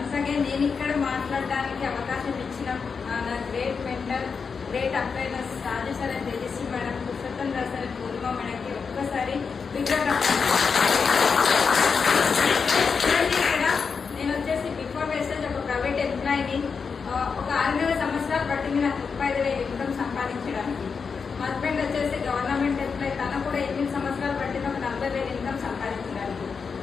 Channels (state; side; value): quieter; right; 5.6 dB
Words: Once again నేను ఇక్కడ మాట్లాడడానికి అవకాశం ఇచ్చిన నా గ్రేట్ మెంటర్, గ్రేట్ అప్లైనర్స్ Raju sir and Tejaswi madam, Purushottam Rao sir, Purnima మేడంకి ఒక్కసారి ఇక్కడ నేను వచ్చేసి బిఫోర్ వేస్టేజ్ ఒక ప్రైవేట్ ఎంప్లాయీని. ఒక 6 సంవత్సరాలు పట్టింది నాకు 35,000 ఇన్కమ్ సంపాదించడానికి. మా హస్బెండ్ వచ్చేసి గవర్నమెంట్ ఎంప్లాయీ, తన కూడా 8 సంవత్సరాలు పట్టింది ఒక 40,000 ఇన్కమ్ సంపాదించడానికి.